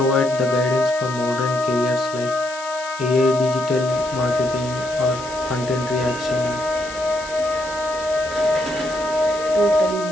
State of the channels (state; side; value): noise; left; hiss, 15 dB below the sound